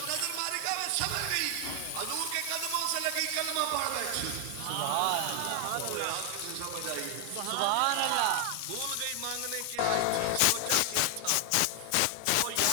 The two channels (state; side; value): different; both; correlation 0.00